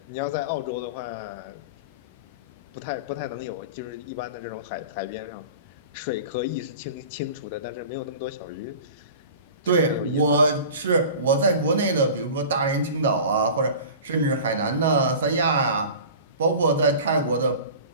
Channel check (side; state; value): both; inverted; correlation -0.38